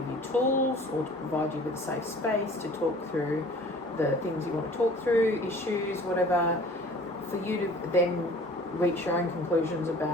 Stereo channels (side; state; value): both; normal; correlation 0.48